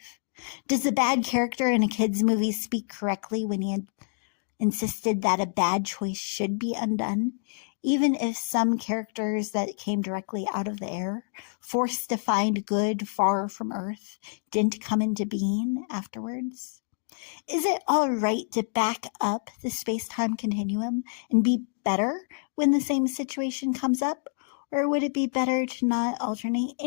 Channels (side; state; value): right; silent; digital silence